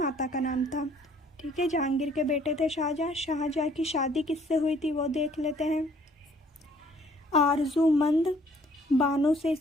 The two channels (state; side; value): normal; both; correlation 0.60